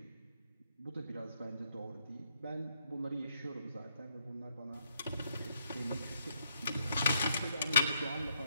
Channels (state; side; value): inverted; both; correlation -0.74